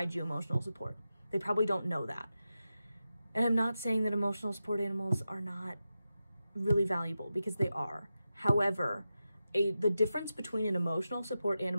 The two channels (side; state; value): both; inverted; correlation -0.91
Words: you emotional support. They probably don't know that. And I'm not saying that emotional support animals are not really valuable, because they are. However, the difference between an emotional support